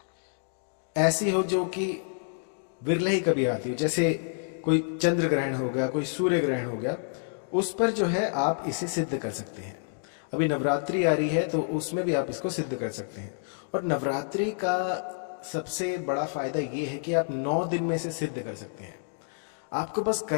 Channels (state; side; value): silent; right; digital silence